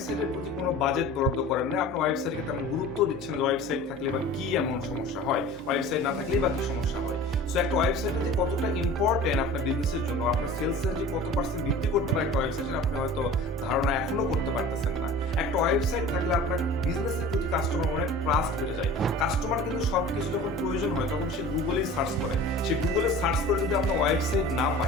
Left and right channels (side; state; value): both; normal; correlation 0.41